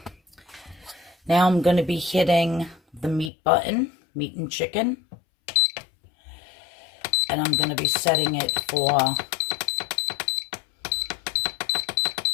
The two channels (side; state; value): right; drops out; at 3.3 s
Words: Now I'm going to be hitting the meat button, meat and chicken. And I'm going to be setting it for